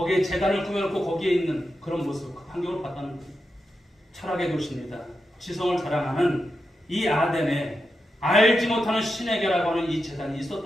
제단을 꾸며놓고 거기에 있는 그런 모습, 그 환경을 봤다는 거예요. 철학의 도시입니다. 지성을 자랑하는 이 아덴에 알지 못하는 신에게라고 하는 이 제단이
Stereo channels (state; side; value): normal; both; correlation 0.88